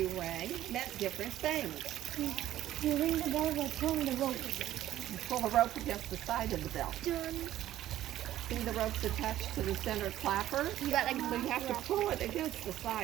rang meant different things. You ring the bell by pulling the rope. You pull the rope against the side of the bell. See the rope's attached to the center clapper? You got like So you have to pull it against the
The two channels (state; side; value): quieter; left; 13.2 dB